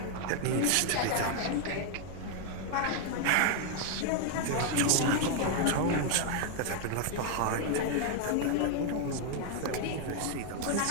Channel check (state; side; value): different; both; correlation 0.00